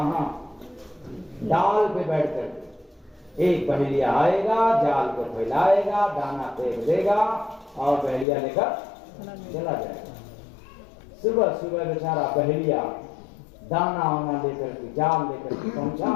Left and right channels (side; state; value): right; drops out; at 8.2 s